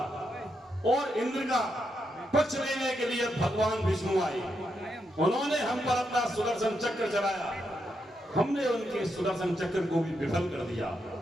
और इंद्र का पक्ष लेने के लिए भगवान विष्णु आए। उन्होंने हम पर अपना सुदर्शन चक्र चलाया, हमने उनके सुदर्शन चक्र को भी विफल कर दिया।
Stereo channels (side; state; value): both; normal; correlation 0.82